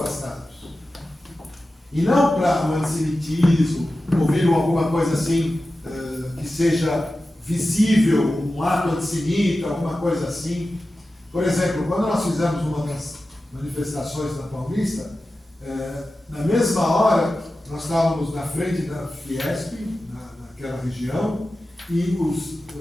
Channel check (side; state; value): both; normal; correlation 0.94